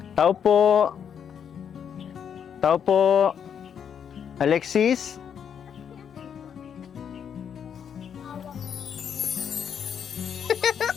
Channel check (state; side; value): quieter; right; 8.0 dB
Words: Tao po. Tao po. Alexis?